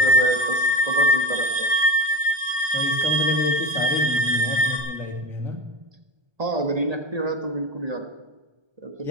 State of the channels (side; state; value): left; late; 1.3 ms